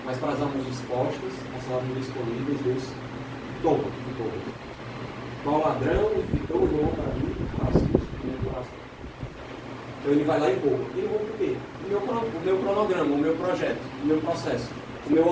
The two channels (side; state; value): both; identical; correlation 1.00